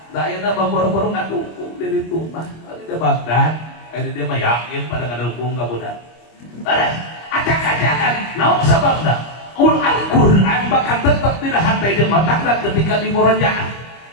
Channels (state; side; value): late; right; 25 ms